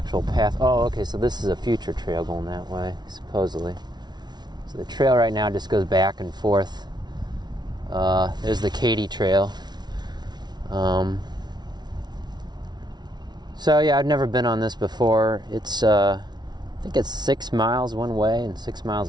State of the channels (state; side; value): late; left; 0.20 ms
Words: path. Oh, okay, so this is a future trail going that way, supposedly. So the trail right now just goes back and forth. There's the Katy Trail. So yeah, I've never been on this before. It's I think it's 6 miles one way and 6